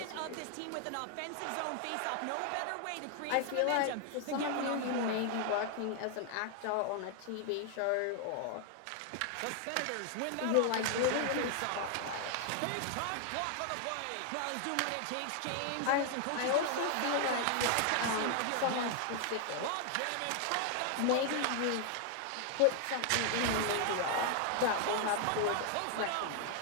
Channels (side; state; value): both; different; correlation 0.00